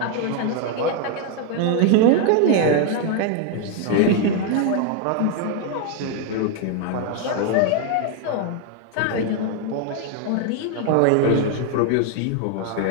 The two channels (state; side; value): different; both; correlation 0.01